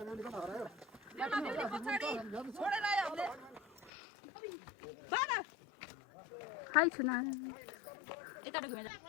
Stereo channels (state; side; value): drops out; right; at 3.9 s